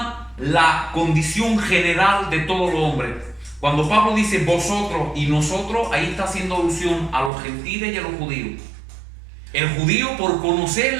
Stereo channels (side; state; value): left; drops out; at 7.3 s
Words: la condición general de todos los hombres. Cuando Pablo dice vosotros y nosotros, ahí está haciendo alusión a los gentiles y a los judíos. El judío, por conocer